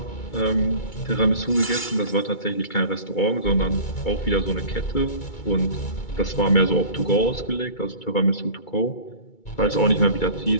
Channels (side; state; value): right; late; 2.3 ms